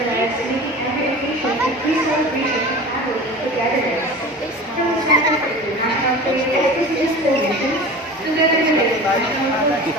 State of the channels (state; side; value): normal; both; correlation 0.36